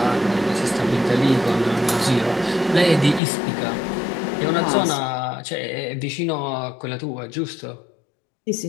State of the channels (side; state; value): right; drops out; at 3.2 s